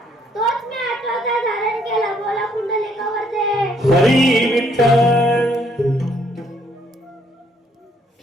तोच मी आठवता धारण केला बोला कुंडलिकावर दे हरी विठ्ठल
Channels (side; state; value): both; normal; correlation 0.67